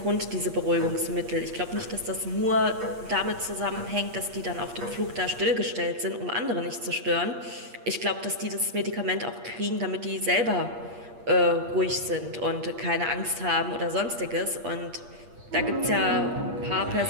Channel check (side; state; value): left; late; 8.5 ms